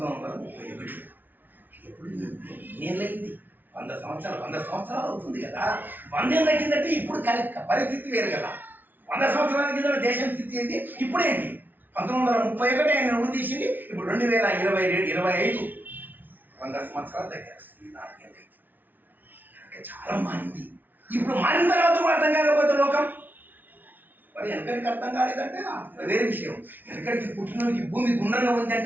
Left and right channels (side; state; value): left; late; 0.087 ms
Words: ఎప్పుడు నేనైంది 100 సంవత్సరాలు అవుతుంది కదా. 100 ఏళ్ళ కిందట ఇప్పుడు పరిస్థితి వేరు కదా. 100 సంవత్సరాల కింద దేశం స్థితి ఏంటి, ఇప్పుడేంటి. 1931 ఆయన ఉరి తీసింది, ఇప్పుడు 2025 100 సంవత్సరాల దగ్గర 4 ఏళ్ళు అయింది. కనుక చాలా మారింది. ఇప్పుడు మారిన తర్వాత కూడా అర్థం కాకపోతే లోకం మరి వెనకడికి అర్థం కాలేదంటే వేరే విషయం. వెనకడికి పుట్టినోడికి భూమి గుండ్రంగా ఉంది